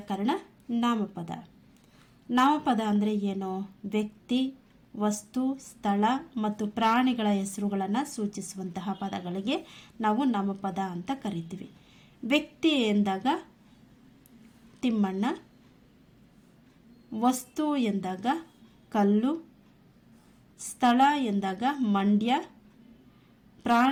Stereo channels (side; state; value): both; identical; correlation 1.00